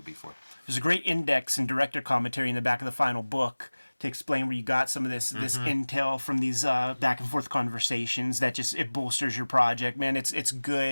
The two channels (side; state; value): both; inverted; correlation -1.00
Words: before. There's a great index and director commentary in the back of the final book to explain where you got some of this intel from these back and forth conversations that just it bolsters your project, man. It's